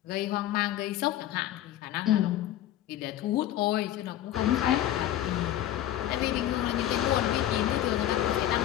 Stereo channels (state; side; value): quieter; right; 12.7 dB